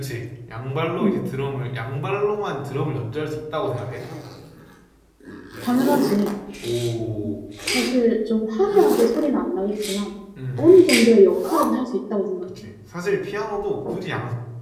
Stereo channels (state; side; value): identical; both; correlation 1.00